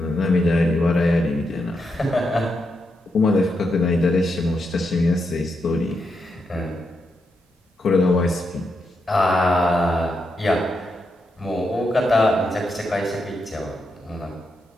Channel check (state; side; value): normal; both; correlation 0.83